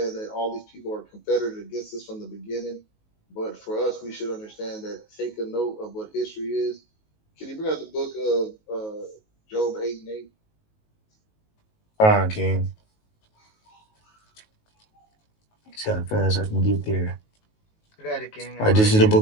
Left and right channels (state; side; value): late; right; 19 ms